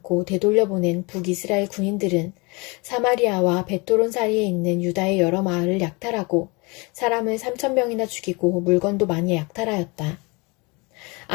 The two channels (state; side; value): quieter; right; 27.9 dB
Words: 되돌려보낸 북이스라엘 군인들은 사마리아와 베토론 사이에 있는 유다의 여러 마을을 약탈하고 사람을 3,000명이나 죽이고 물건도 많이 약탈하였다.